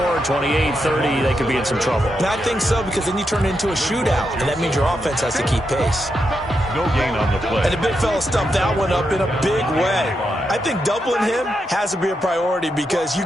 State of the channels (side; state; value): both; normal; correlation 0.84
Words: 28, 30, they could be in some trouble. And I think so, because then you turn it into a shootout, and that means your offense has to keep pace. No gain on the play. And the big fella stumped that one up in a big way. I think doubling him has to be a priority because you